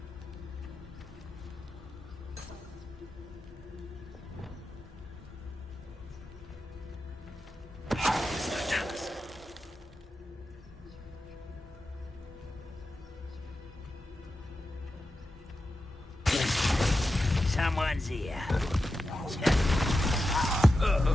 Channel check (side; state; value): both; normal; correlation 0.91